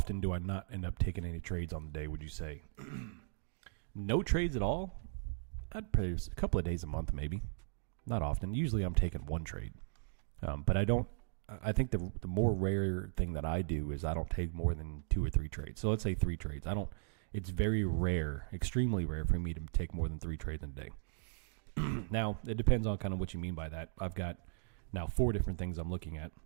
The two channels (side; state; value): left; silent; digital silence